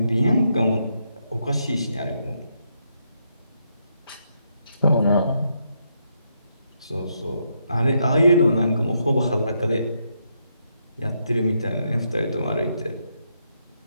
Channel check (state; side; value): inverted; both; correlation -0.79